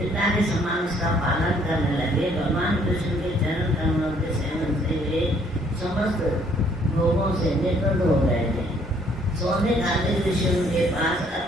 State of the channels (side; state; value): both; normal; correlation 0.63